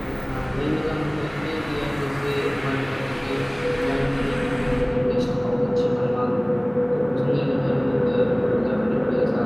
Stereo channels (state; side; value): noise; right; hum, 24 dB below the sound